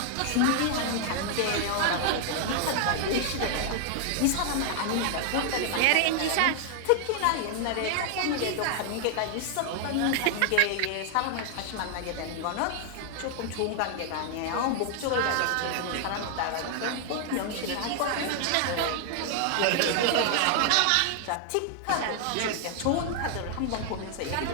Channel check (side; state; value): both; different; correlation 0.00